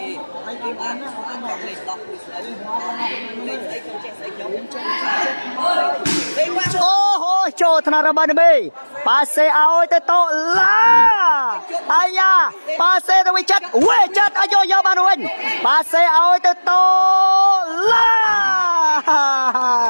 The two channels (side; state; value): both; inverted; correlation -1.00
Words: អូហូចូលថ្នាក់របស់នេះប៉ាសេឲ្យទៅតឡាអាយ៉ាប៉ាសេទៅវិចិត្រអាយយកបានវិញប៉ាសេឲ្យទៅតឡា